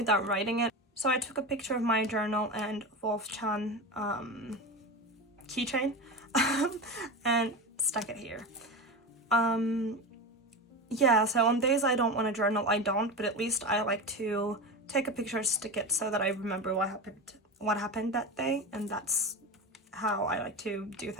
writing it. So I took a picture of my journal and Wolf-chan keychain and stuck it here. Yeah, so on days I don't want to journal, I don't, but at least I like to take a picture, stick it so that I remember what happened that day, and that's how I like to do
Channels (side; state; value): both; normal; correlation 0.23